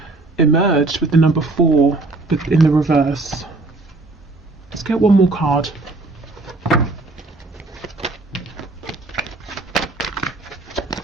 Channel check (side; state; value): left; quieter; 3.2 dB